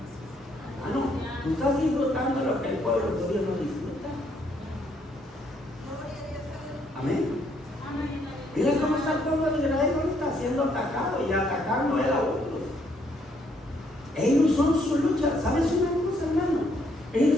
Hermano, tú estás disfrutando lo que el pueblo de Dios no disfruta. Amén. Mira cómo está el pueblo de Israel ahorita siendo atacado y atacando él a otros. Ellos son su lucha. ¿Sabes una cosa, hermano?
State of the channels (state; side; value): normal; both; correlation 0.70